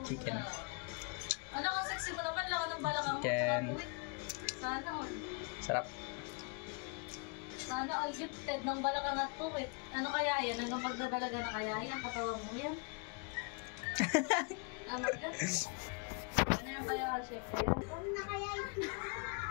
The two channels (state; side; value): quieter; right; 34.9 dB